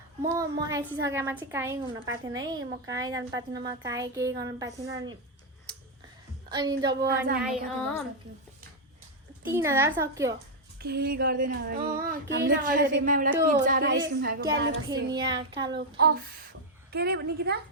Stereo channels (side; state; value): both; normal; correlation 0.00